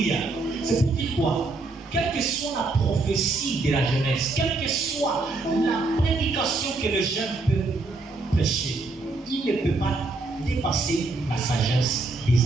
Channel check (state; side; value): quieter; left; 3.4 dB